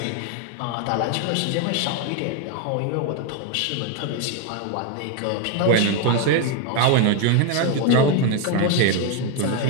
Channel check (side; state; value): both; different; correlation 0.01